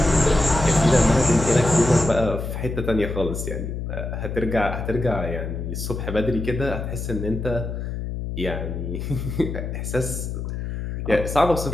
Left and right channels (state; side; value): noise; left; hum, 5 dB below the sound